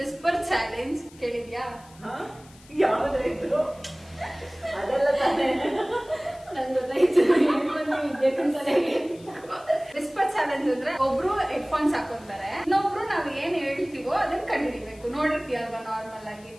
whisper challenge. ಕೇಳಿದ್ಯಾ? ಯಾವ್ದಾಯ್ತು ಅದೆಲ್ಲ ತಾನೇ ನನ್ ಗೊತ್ತಾಯ್ತು. ವಿದ್ಯಾಕಂತಾನೆ ವಿಸ್ಪರ್ ಚಾಲೆಂಜ್ ಅಂದ್ರೆ ಒಬ್ರು ಹೆಡ್ಫೋನ್ಸ್ ಹಾಕೊಂತಾರೆ, ಇನ್ನೊಬ್ರು ನಾವ್ ಏನ್ ಹೇಳ್ತೀವೋ ಅದನ್ನ ಕಂಡುಹಿಡಿಬೇಕು. ನೋಡಿರ್ತೀಯಲ್ವಾ ನಾರ್ಮಲ್ ಆಗಿ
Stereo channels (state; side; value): noise; left; hiss, 25 dB below the sound